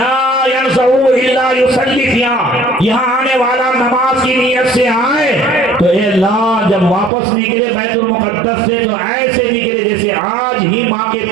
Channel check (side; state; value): left; drops out; at 7.1 s